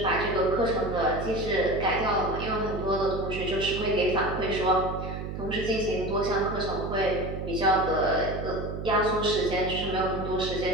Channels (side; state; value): right; noise; hum, 6 dB below the sound